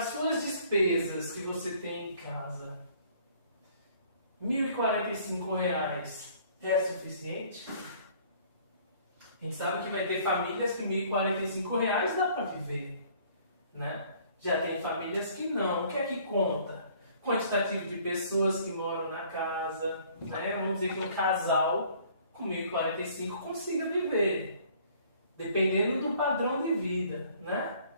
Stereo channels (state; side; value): inverted; both; correlation -0.57